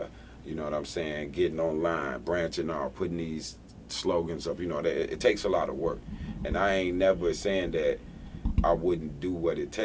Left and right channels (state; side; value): identical; both; correlation 1.00